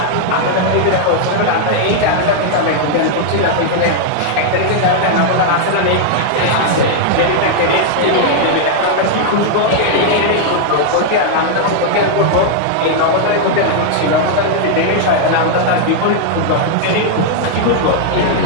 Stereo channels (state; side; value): different; both; correlation -0.01